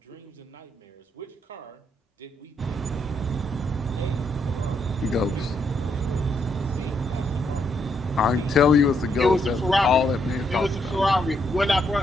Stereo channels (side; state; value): both; normal; correlation 0.76